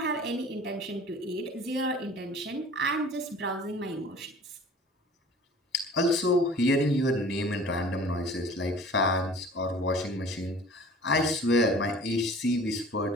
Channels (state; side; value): normal; both; correlation 0.46